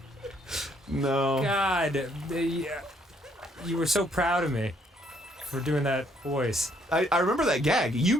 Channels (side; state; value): both; normal; correlation 0.67